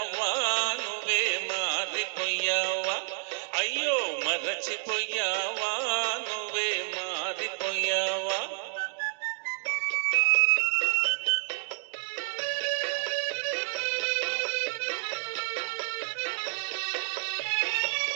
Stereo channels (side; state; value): left; silent; digital silence